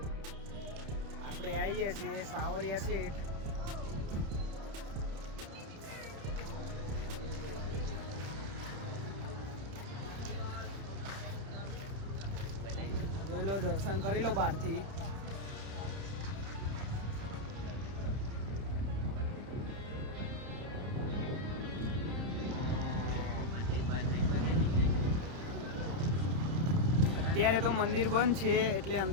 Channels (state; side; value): late; left; 30 ms